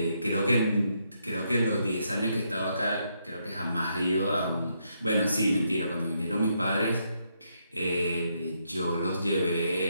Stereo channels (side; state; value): both; inverted; correlation -0.77